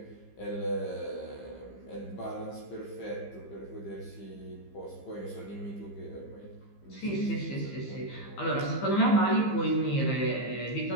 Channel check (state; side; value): late; right; 15 ms